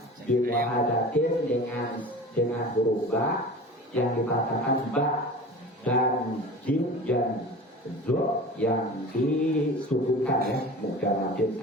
dimuhadatin dengan huruf ba yang dikatakan ba dan jim dan zo yang disubuhkan ya, muka wajib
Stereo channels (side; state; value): both; normal; correlation 0.37